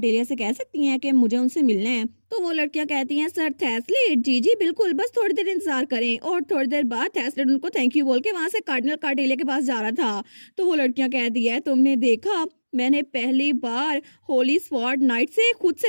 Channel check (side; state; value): both; inverted; correlation -1.00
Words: से कह सकती हैं कि मुझे उनसे मिलना है। तो वो लड़कियां कहती हैं सर थेस्लेट जी जी बिल्कुल, बस थोड़ी देर इंतजार करें। और थोड़ी देर बाद थेस्लेट उनको थैंक यू बोल के वहां से कार्डिनल कार्टेलिया के पास जा रहा था। तो वो लड़कियां कहती है तुमने देखा, मैंने पहली बार होली स्वॉर्ड नाइट से खुद